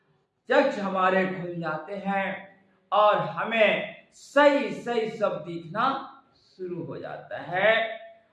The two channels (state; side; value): identical; both; correlation 1.00